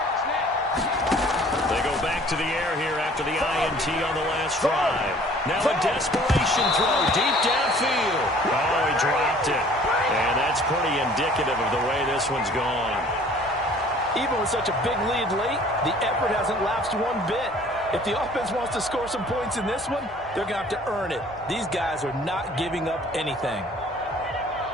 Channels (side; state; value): both; normal; correlation 0.52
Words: To the air here after the INT on the last drive. Now a desperation throw deep downfield. Oh, he dropped it. And that's pretty indicative of the way this one's gone. Even with such a big lead late, the effort hasn't lapsed one bit. If the offense wants to score some points in this one, they're going to have to earn it. These guys are not giving up anything.